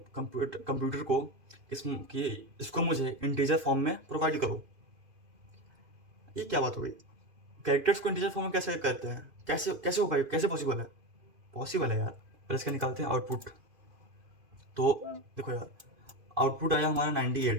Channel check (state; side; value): late; left; 2.5 ms